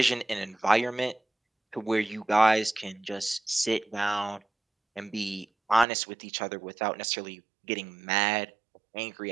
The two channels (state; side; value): drops out; left; at 5.9 s